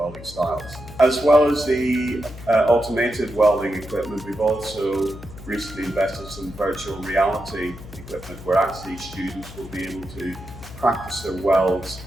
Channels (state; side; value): noise; left; hum, 15 dB below the sound